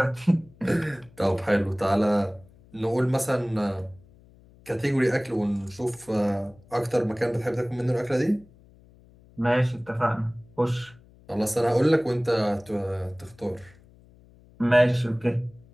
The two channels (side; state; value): left; noise; hum, 26 dB below the sound